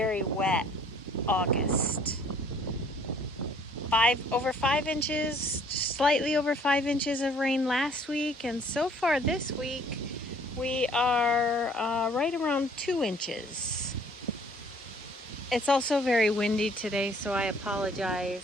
wet August. Over 5 inches, slightly over 5 inches of rain last week, and so far this week we are right around 2 inches. It's also very windy today, so I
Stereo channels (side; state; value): both; normal; correlation 0.58